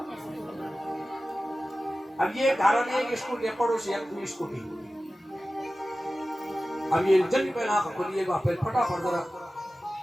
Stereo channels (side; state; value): both; normal; correlation 0.95